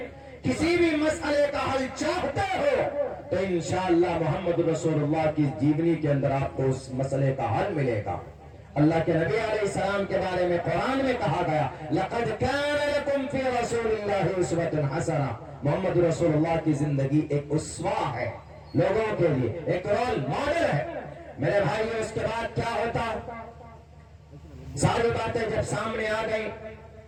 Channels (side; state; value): both; identical; correlation 1.00